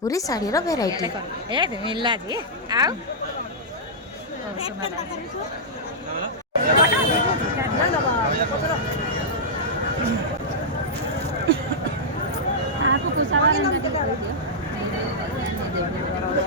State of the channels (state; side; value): normal; both; correlation -0.10